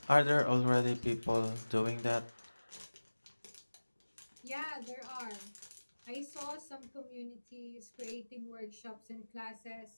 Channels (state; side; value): inverted; both; correlation -1.00